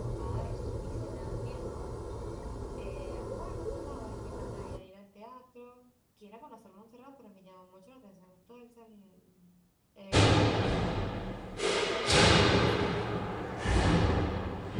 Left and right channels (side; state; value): both; identical; correlation 1.00